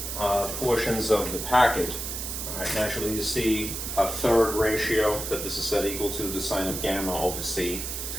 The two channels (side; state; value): right; noise; hiss, 5 dB below the sound